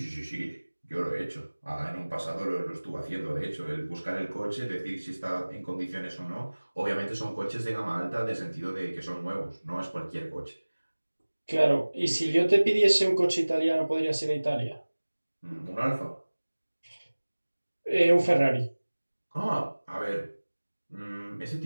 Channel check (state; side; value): inverted; both; correlation -1.00